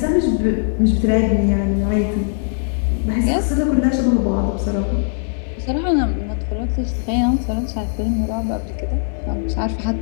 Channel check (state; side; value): silent; right; 66 dB below the other